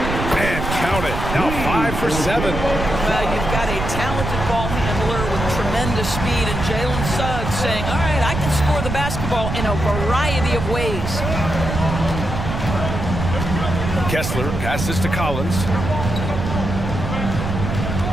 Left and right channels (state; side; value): noise; right; rumble, 4 dB below the sound